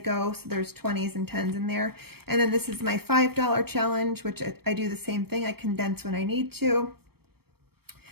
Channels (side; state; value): left; late; 0.96 ms